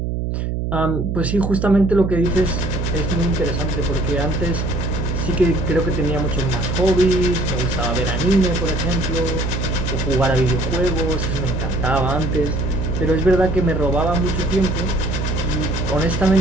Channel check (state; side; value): noise; right; hum, 1 dB below the sound